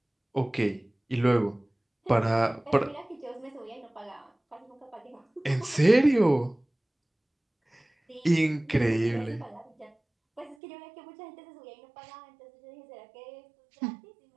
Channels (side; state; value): left; drops out; at 10.6 s